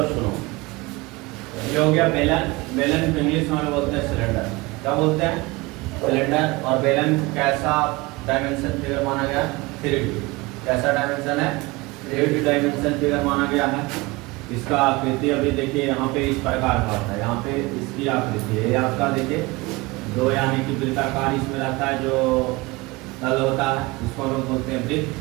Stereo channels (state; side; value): quieter; left; 22.9 dB